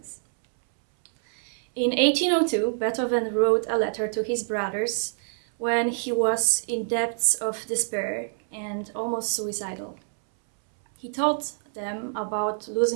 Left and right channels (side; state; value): left; silent; 61 dB below the other